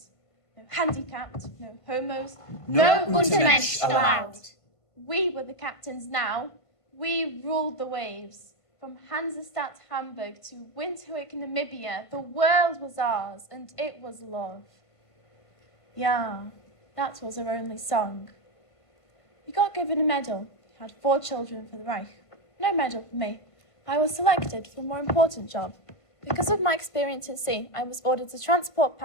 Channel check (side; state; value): right; late; 1.5 ms